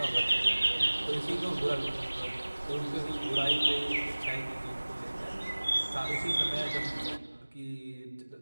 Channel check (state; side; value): inverted; both; correlation -1.00